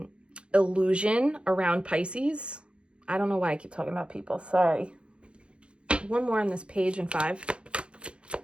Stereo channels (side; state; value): left; late; 0.057 ms